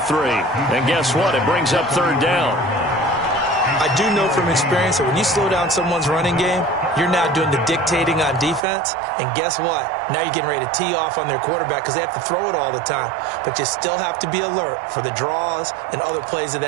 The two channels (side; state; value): left; drops out; at 8.6 s